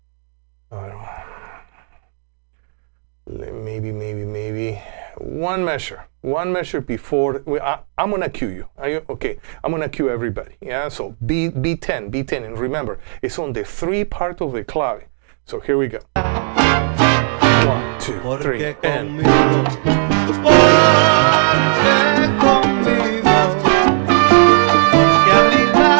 maybe one measure before. I'm gonna cue you. Are you okay? I'm gonna cue everybody. Yeah. So B10, and remember, it's on the 3 part of the clave. So here we go. 1, 2, 3, and.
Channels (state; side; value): silent; left; 56 dB below the other